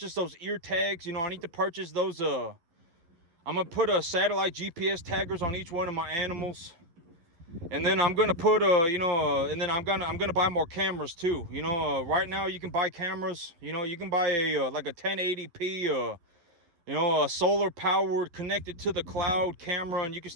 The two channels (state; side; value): late; left; 11 ms